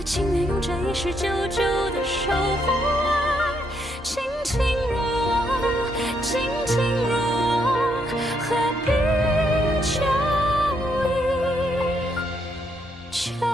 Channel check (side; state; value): both; normal; correlation 0.75